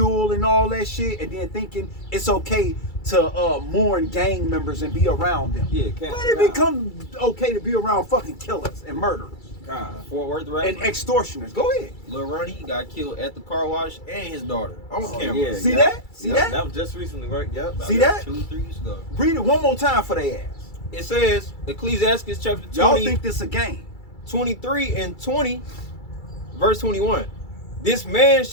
and all that shit, and then thinking it's okay to mourn gang members and be around them. Yeah, When it become okay to be around fucking killers and murderers Fort Worth, right? and extortioners? Go ahead. Lil Ronnie got killed at the car wash, and his daughter on camera. Yeah, See yep. that? See Yep, that? That was just recently, right? Yep. See that? 2-3 years ago. Read it one more time for their ass. It says, Ecclesiastes chapter 20, Y'all think this a game? 23 and 20, verse 21. This man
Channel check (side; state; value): right; late; 2.3 ms